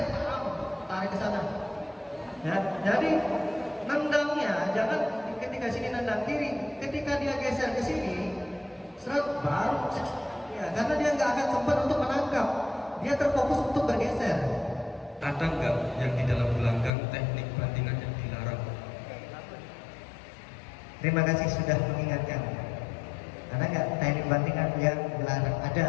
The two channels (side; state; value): right; drops out; at 16.9 s